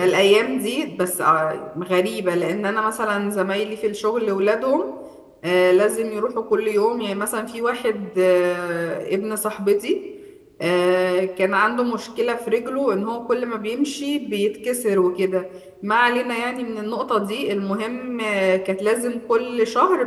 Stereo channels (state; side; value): identical; both; correlation 1.00